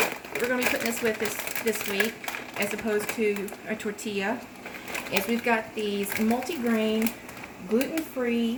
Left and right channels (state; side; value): identical; both; correlation 1.00